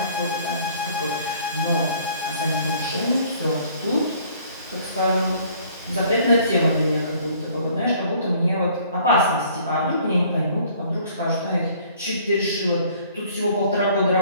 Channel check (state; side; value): inverted; both; correlation -0.57